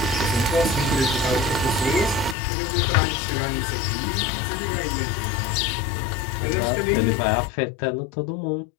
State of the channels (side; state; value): right; drops out; at 2.4 s